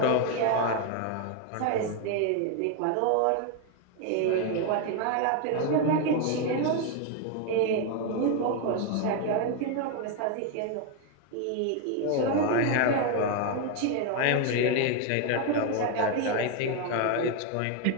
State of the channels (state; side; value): different; both; correlation 0.01